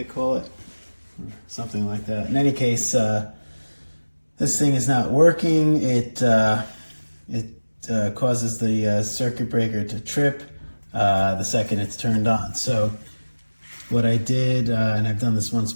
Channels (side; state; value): both; inverted; correlation -1.00